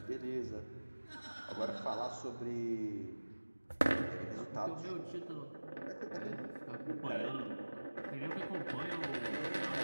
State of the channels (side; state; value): both; inverted; correlation -1.00